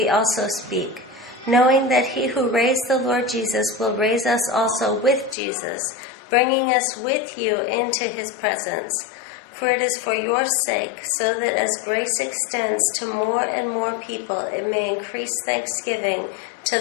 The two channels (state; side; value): drops out; right; at 5.4 s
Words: also speak, knowing that he who raised the Lord Jesus will raise us also with Jesus, bringing us with you into his presence. For it is for your sake, so that as grace extends to more and more people, it may increase thanksgiving to